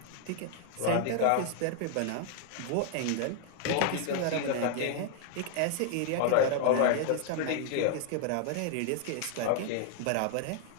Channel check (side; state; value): both; different; correlation 0.00